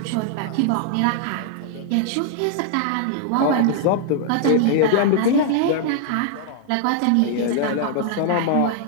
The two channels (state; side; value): different; both; correlation 0.00